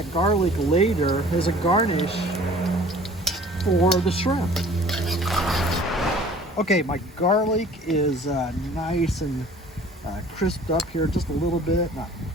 garlic later as a garnish for the shrimp. Okay, my garlic is nice and crisped up here just a little bit. Not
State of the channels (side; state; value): both; normal; correlation 0.49